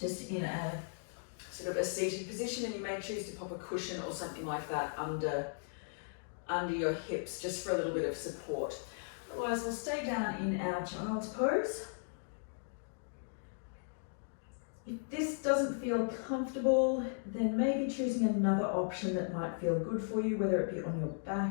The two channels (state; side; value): silent; right; digital silence